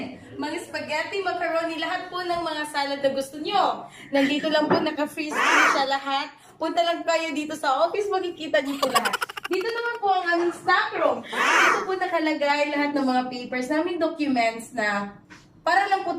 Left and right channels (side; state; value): both; identical; correlation 1.00